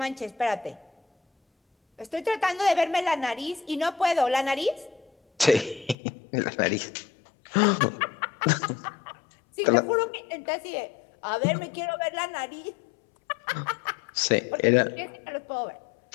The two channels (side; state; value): right; drops out; at 6.0 s